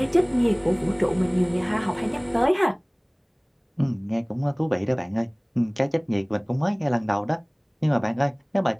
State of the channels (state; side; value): identical; both; correlation 1.00